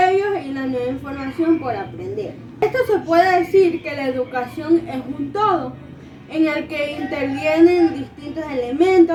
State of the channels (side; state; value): both; identical; correlation 1.00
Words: y la nueva información por aprender. Esto se puede decir que la educación es un todo, en el que intervienen distintos